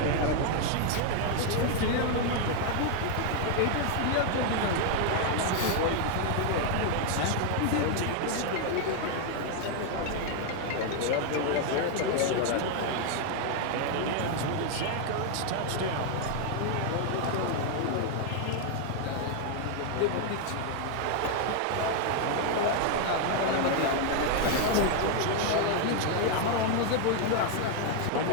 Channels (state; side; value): different; both; correlation 0.00